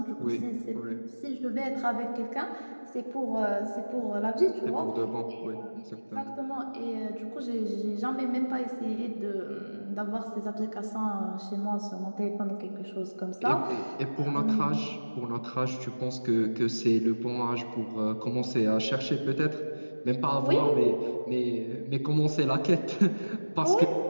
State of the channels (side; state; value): both; inverted; correlation -1.00